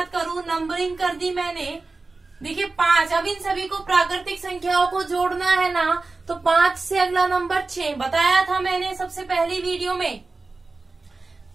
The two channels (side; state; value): left; quieter; 3.7 dB